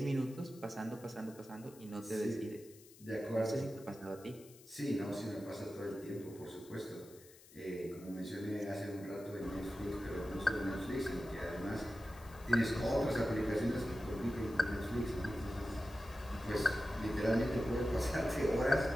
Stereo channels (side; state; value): left; noise; hiss, 22 dB below the sound